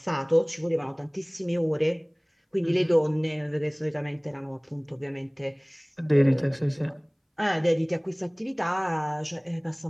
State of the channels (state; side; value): identical; both; correlation 1.00